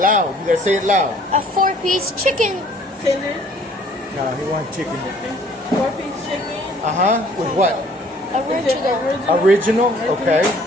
You gotta say it loud. a 4-piece chicken. Tender. No, he wants chicken. 4-piece chicken. With what? Is it Original. Original? Okay.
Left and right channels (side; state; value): both; normal; correlation 0.56